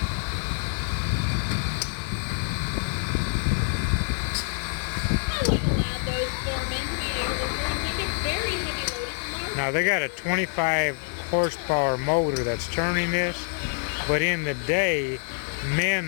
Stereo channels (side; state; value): right; silent; digital silence